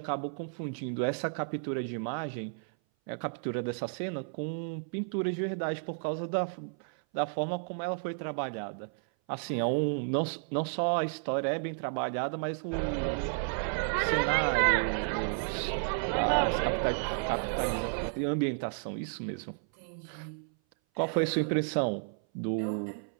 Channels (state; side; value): silent; left; 56 dB below the other